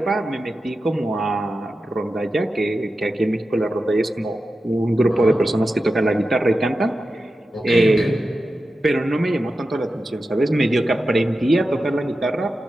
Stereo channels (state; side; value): normal; both; correlation 0.92